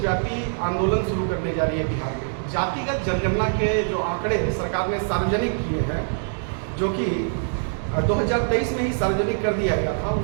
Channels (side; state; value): left; silent; digital silence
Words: आंदोलन शुरू करने जा रही है बिहार में। जातिगत जनगणना के जो आंकड़े सरकार ने सार्वजनिक किए हैं, जो कि 2023 में ही सार्वजनिक कर दिया गया था,